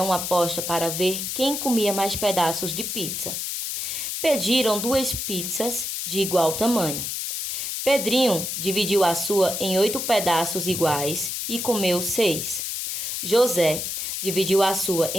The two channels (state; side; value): noise; left; hiss, 3 dB below the sound